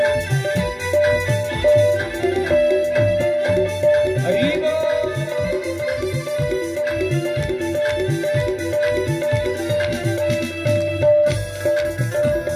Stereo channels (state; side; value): identical; both; correlation 1.00